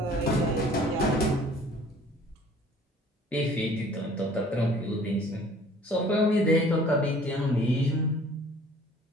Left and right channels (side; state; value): both; normal; correlation 0.52